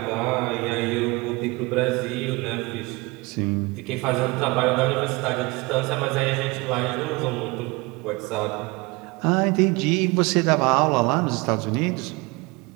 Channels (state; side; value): quieter; left; 24.9 dB